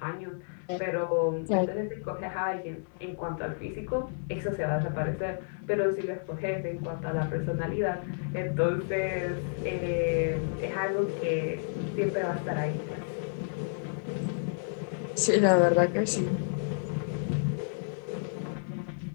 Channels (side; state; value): right; silent; digital silence